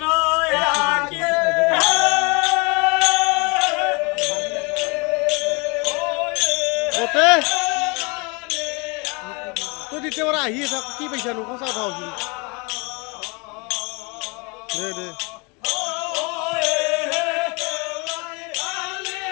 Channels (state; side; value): quieter; right; 29.7 dB